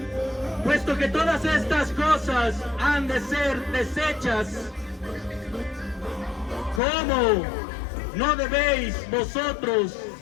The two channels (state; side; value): drops out; right; at 6.8 s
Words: Puesto que todas estas cosas han de ser deshechas, ¿cómo no debéis vosotros